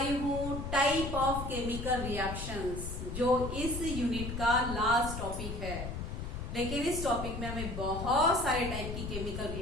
हूँ टाइप ऑफ केमिकल रिएक्शंस, जो इस यूनिट का लास्ट टॉपिक है। लेकिन इस टॉपिक में हमें बहुत सारे टाइप की केमिकल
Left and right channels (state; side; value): noise; left; rumble, 5 dB below the sound